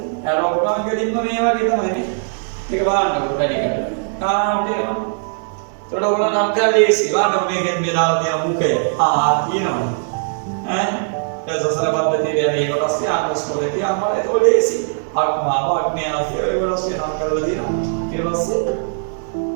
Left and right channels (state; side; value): silent; left; digital silence